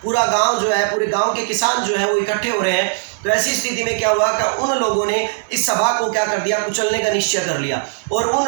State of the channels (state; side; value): silent; left; 66 dB below the other